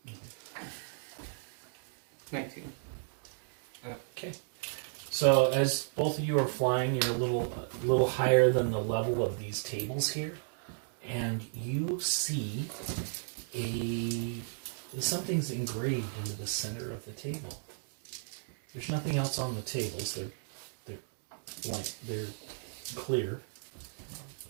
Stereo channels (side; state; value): left; silent; digital silence